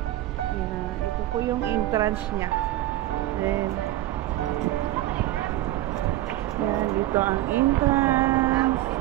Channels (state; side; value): quieter; left; 15.1 dB